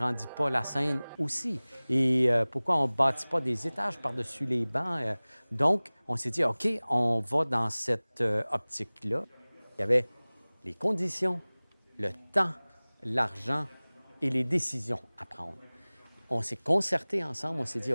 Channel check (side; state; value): both; inverted; correlation -1.00